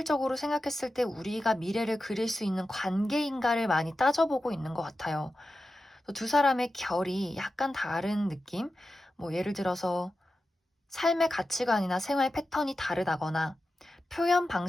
생각했을 때 우리가 미래를 그릴 수 있는 관계인가를 많이 따져보고 있는 것 같아요. 두 사람의 결이 약간 다른 느낌? 뭐 예를 들어서 삶의 가치관이나 생활 패턴이 다르다거나 표현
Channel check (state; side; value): normal; both; correlation 0.92